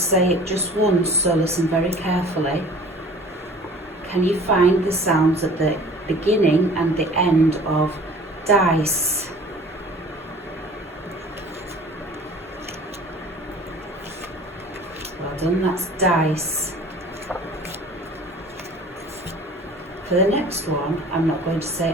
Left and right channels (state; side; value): normal; both; correlation 0.46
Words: say it just once, so listen very carefully. Can you find the sounds at the beginning and the end of dice? Well done, that's dice. For the next one, I'm not going to